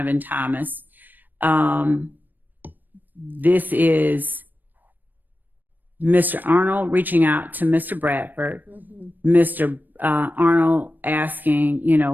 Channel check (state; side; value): late; left; 0.089 ms